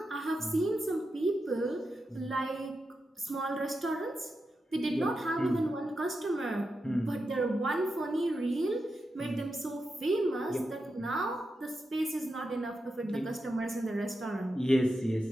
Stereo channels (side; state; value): both; normal; correlation 0.88